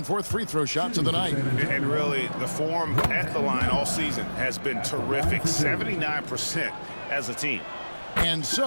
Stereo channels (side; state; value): both; inverted; correlation -1.00